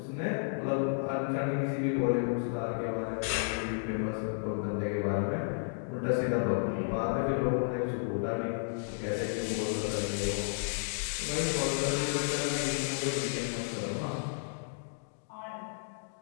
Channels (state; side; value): silent; right; digital silence